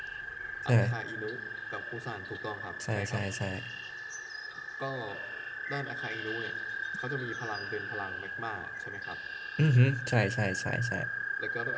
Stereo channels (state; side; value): identical; both; correlation 1.00